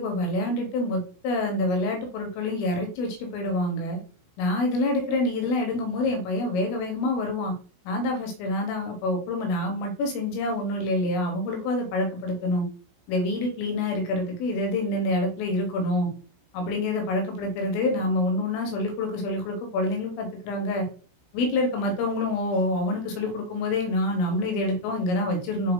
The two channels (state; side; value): late; right; 17 ms